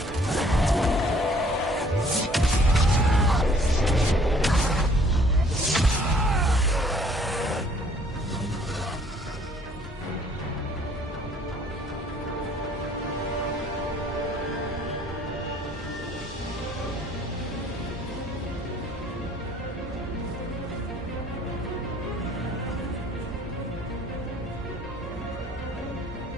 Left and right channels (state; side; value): normal; both; correlation 0.59